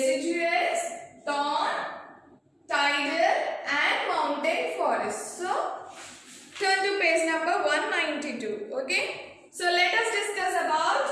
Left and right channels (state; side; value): identical; both; correlation 1.00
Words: thorn, tidal and mountain forest. So turn to page number 192. Okay, so let us discuss about